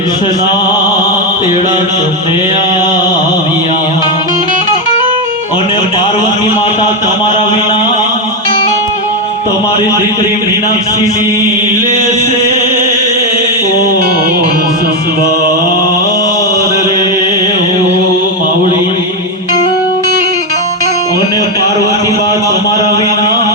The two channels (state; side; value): normal; both; correlation 0.07